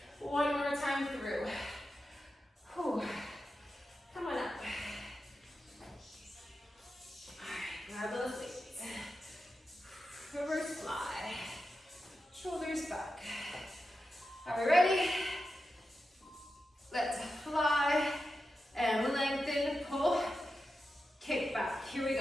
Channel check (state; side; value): normal; both; correlation 0.90